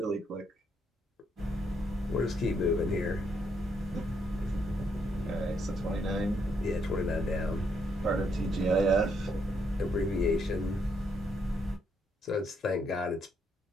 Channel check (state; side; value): normal; both; correlation 0.75